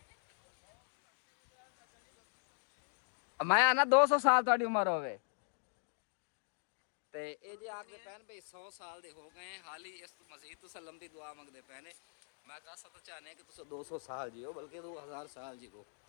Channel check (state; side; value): silent; right; digital silence